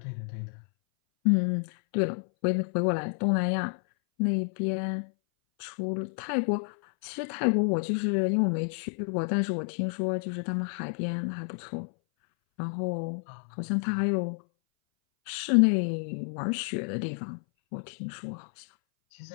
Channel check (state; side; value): silent; right; 58 dB below the other